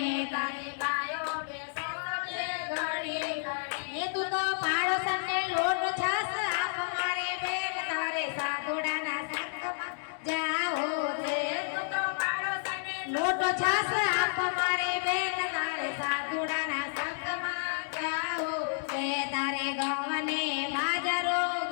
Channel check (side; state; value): right; silent; digital silence